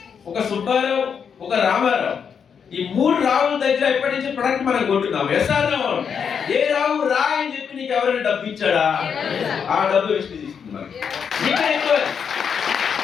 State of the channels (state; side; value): quieter; right; 6.9 dB